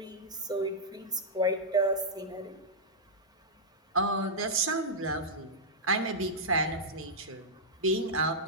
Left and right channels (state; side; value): normal; both; correlation -0.08